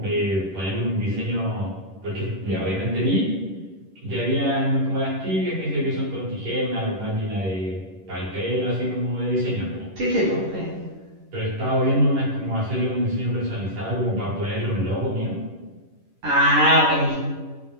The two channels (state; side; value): late; left; 10 ms